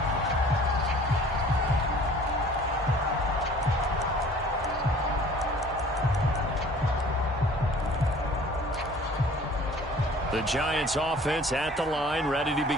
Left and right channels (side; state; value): both; normal; correlation 0.50